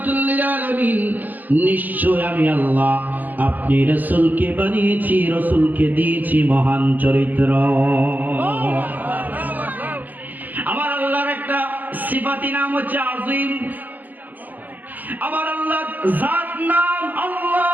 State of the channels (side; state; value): left; late; 0.084 ms